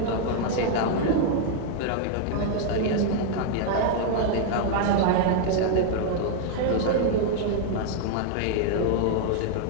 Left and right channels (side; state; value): both; different; correlation 0.00